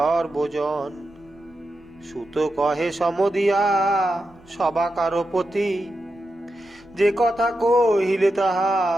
সুত কহে সমদিয়া সবাকার প্রতি, যে কথা কহিলে তাহা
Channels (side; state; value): right; noise; rumble, 29 dB below the sound